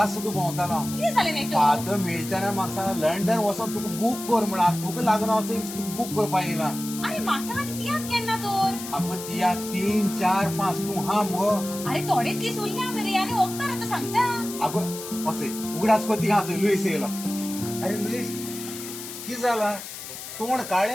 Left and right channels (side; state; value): left; noise; hiss, 10 dB below the sound